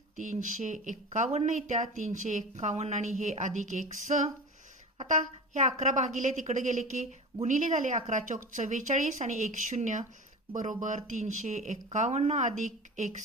351 येत्या. 351 आणि हे अधिक x. आता हे 11 भागिले तिकडे गेले की गुणिले झाले. 11 चौक 44 आणि 1 0 बरोबर 351 अधिक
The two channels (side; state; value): both; normal; correlation 0.32